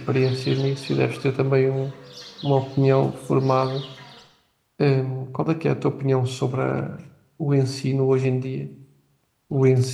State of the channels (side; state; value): both; identical; correlation 1.00